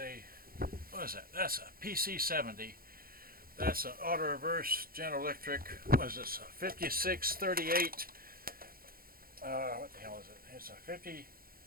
what is that? That's a PC-70. That's an auto reverse General Electric. What is this? A 5638. What the hell is it? It's a 50.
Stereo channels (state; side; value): late; left; 0.42 ms